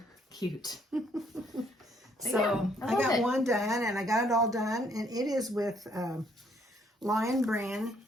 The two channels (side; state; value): both; normal; correlation 0.67